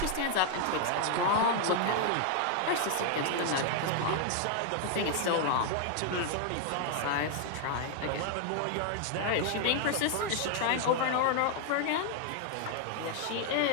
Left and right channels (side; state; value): both; different; correlation 0.00